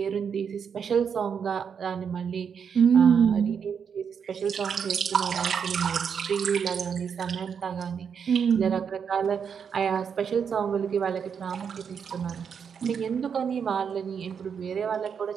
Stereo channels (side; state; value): left; quieter; 7.0 dB